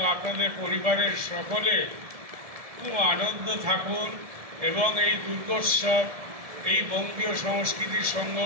আপনাদের পরিবারের সকলে খুব আনন্দ থাকুন এবং এই দুর্গোৎসব, এই বঙ্গীয় সংস্কৃতি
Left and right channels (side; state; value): left; late; 1.7 ms